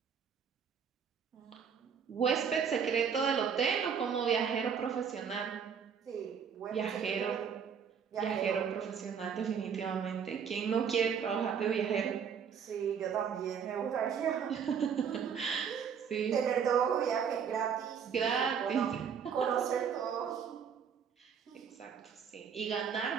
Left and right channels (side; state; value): left; quieter; 7.2 dB